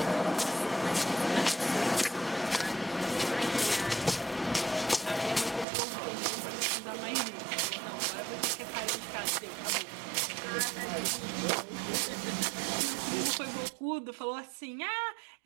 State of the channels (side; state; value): left; drops out; at 5.7 s